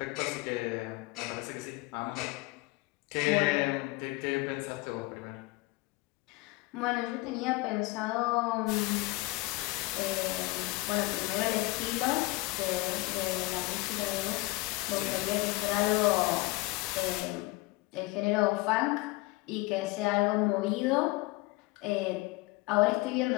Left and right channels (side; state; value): right; quieter; 21.7 dB